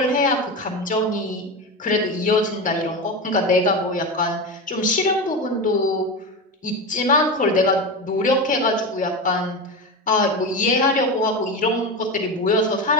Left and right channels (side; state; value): both; normal; correlation 0.20